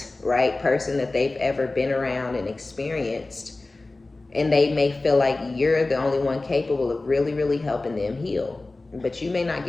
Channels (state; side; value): quieter; right; 3.2 dB